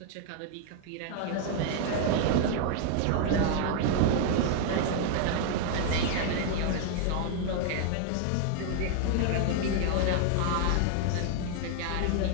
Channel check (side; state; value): both; different; correlation 0.00